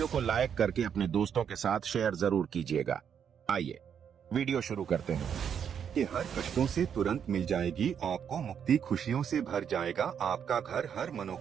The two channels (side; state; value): left; quieter; 8.0 dB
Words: को लाइक करके अपने दोस्तों के साथ शेयर जरूर कीजिएगा। आइए वीडियो शुरू करते हैं। कि हर कष्टों से तुरंत मिल जाएगी आपको मुक्ति, खुशियों से भर जाएगा आपका घर, हर